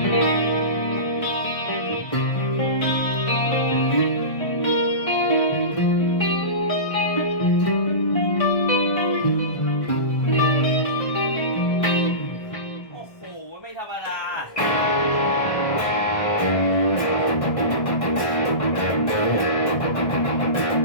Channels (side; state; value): right; late; 1.4 ms